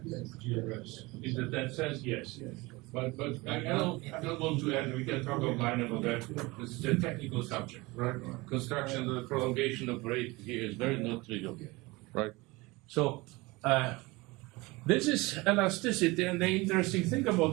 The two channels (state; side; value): quieter; left; 22.9 dB